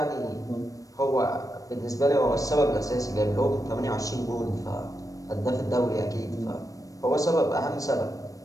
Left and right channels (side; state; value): right; late; 0.16 ms